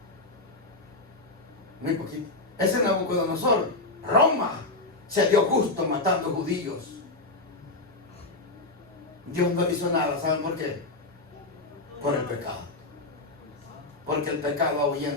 Muy poquito. Ese Nabucodonosor, Roma, se dio gusto matando judíos. Dios no hizo nada. ¿Saben por qué? Por el pecado. Porque el pecado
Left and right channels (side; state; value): right; quieter; 3.0 dB